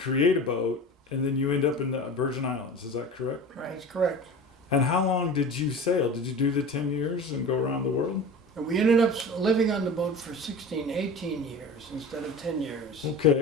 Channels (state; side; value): normal; both; correlation 0.35